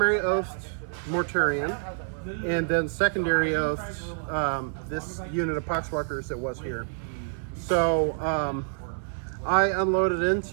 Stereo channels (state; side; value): silent; left; digital silence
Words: oathed Mortarion, and then secondary oathed this unit of Poxwalkers that was here. So I unloaded